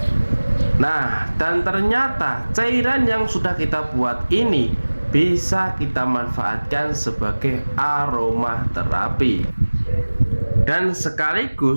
Nah, dan ternyata cairan yang sudah kita buat ini bisa kita manfaatkan sebagai aroma terapi, dan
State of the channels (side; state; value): both; inverted; correlation -1.00